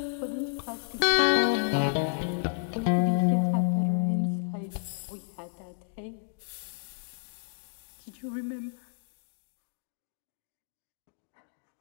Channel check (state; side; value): silent; right; digital silence